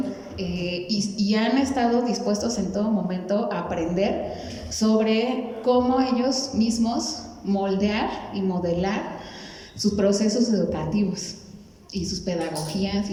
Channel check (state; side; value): identical; both; correlation 1.00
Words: y han estado dispuestos en todo momento a aprender sobre cómo ellos mismos moldear y modelar sus procesos educativos y sus pedagogías